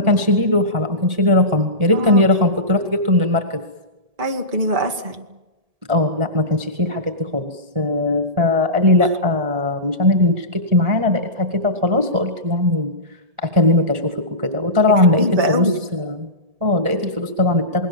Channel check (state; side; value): late; left; 1.7 ms